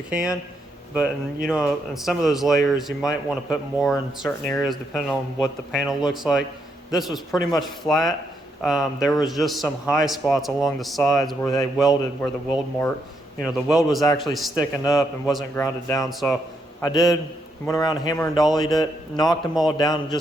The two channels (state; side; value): normal; both; correlation 0.78